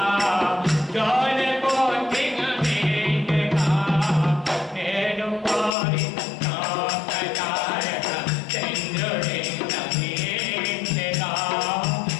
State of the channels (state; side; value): drops out; right; at 5.8 s